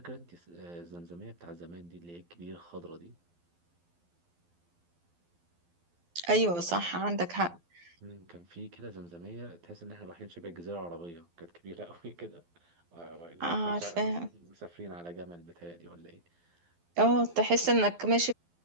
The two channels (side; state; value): left; late; 12 ms